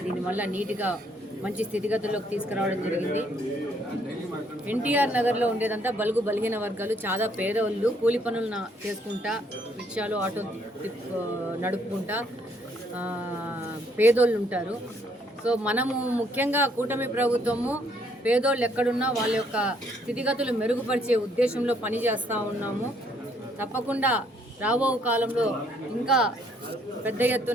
దీనివల్ల నీట్గా మంచి స్థితిగతుల్లోకి తీసుకురావడం జరిగింది. ఎన్టీఆర్ నగర్లో ఉండేదంతా బలుగు బలిగిన వర్గాలు, చాలా పేదవాళ్ళు, కూలి పనులు చేసుకుంటా, రిక్షాలు, ఆటో నడుపుకుంటా పేదోళ్ళు ఉంటారు. సో మనము ముఖ్యంగా కూటమి ప్రభుత్వము పేదోళ్ళు ఎక్కడున్నా వాళ్ళ యొక్క స్థితిగతులు మెరుగుపరిచే ఉద్దేశంలో పనిచేస్తూ ఉన్నాము. తప్పకుండా రాబో కాలంలో ఇంకా పెద్ద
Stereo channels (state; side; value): normal; both; correlation 0.68